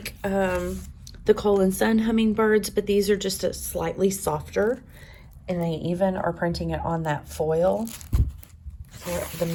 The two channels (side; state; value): both; identical; correlation 1.00